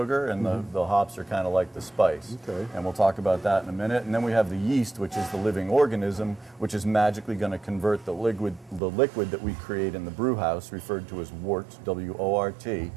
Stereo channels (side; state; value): left; drops out; at 8.8 s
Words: and the hops are kind of like the spice. Okay. And we'll talk about that in a minute. And then we have the yeast, which is the living organism, which is magically going to convert the liquid that we create in the brew house, referred to as wort, W-O-R-T.